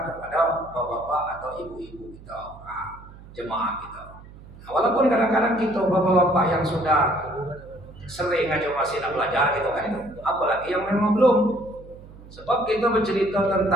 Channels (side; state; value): right; noise; hum, 19 dB below the sound